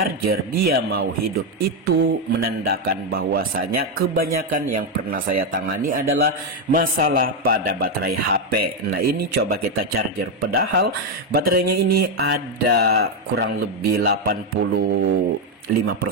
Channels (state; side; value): normal; both; correlation 0.05